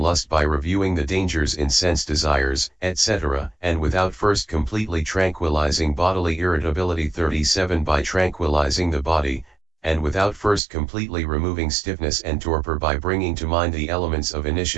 by reviewing the dangers in sense desires, etc., and without first completely tranquilizing bodily irritability 37 by tranquilizing the body, and without first completely removing stiffness and torpor by bringing to mind the elements of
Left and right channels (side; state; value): left; drops out; at 10.6 s